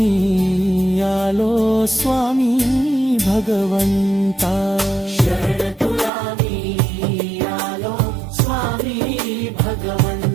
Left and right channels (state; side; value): drops out; left; at 6.1 s